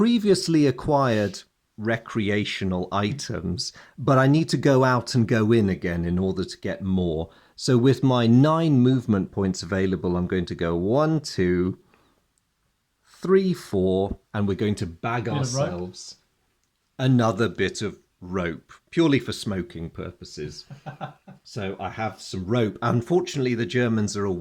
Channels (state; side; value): identical; both; correlation 1.00